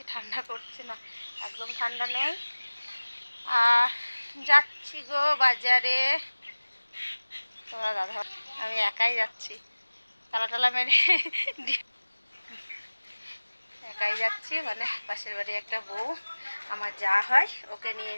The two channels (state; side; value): inverted; both; correlation -1.00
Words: ঠান্ডা করছে না, একদম ঠান্ডা নেই। আর যাচ্ছি গো বাজারে। তোমরা দাদা, আমি একাই যাচ্ছি, তালা টালা মেরে একাই যাচ্ছি, মানে পাশের বাড়ি একটা বউ আমার যা হয় ওকে নিয়ে